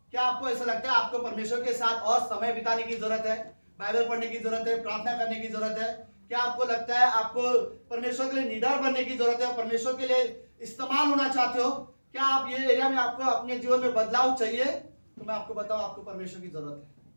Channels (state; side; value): inverted; both; correlation -1.00